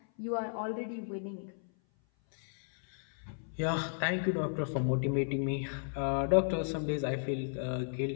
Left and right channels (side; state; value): right; silent; 55 dB below the other